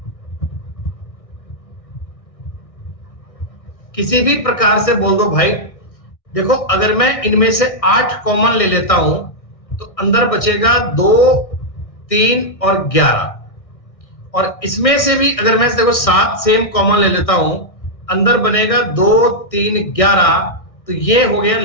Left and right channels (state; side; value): late; right; 1.6 ms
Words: किसी भी प्रकार से बोल दो भाई। देखो, अगर मैं इनमें से 8 कॉमन ले लेता हूं तो अंदर बचेगा 2, 3 और 11, और इसमें से भी अगर मैं देखो 7 सेम कॉमन ले लेता हूं, अंदर बनेगा 2, 3, 11, तो ये हो गया